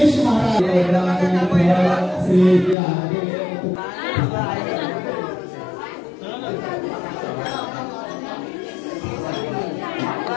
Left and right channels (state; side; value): drops out; right; at 2.8 s